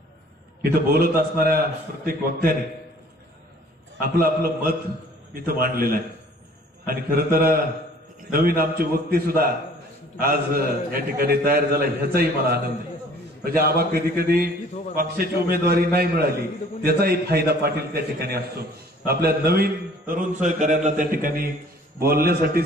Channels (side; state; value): both; normal; correlation 0.53